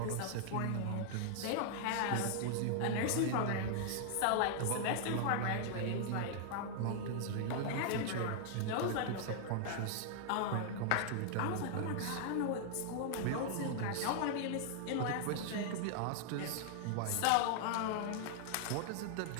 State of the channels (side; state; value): both; different; correlation -0.01